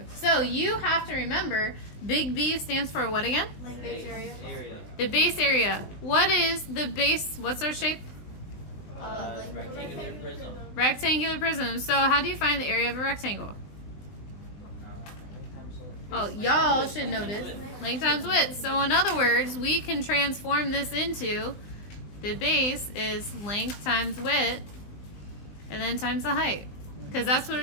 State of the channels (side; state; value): right; late; 20 ms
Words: So you have to remember, big B stands for what again? Base area. The base area. What is the base? What's our shape? Rectangular prism. Rectangular prism. So how do you find the area of a rectangle? Oh, y'all should know this. Length times width. So in other words, we can transform this into the base is length times width and then times the height. Because that's what